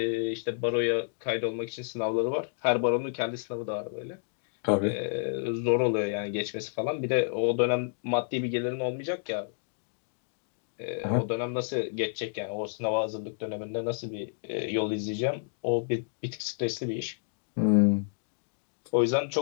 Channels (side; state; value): right; silent; digital silence